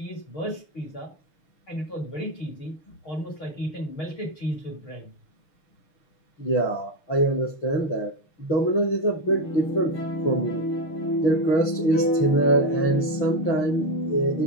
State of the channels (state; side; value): late; right; 6.5 ms